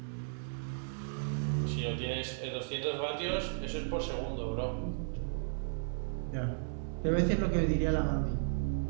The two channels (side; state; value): left; silent; digital silence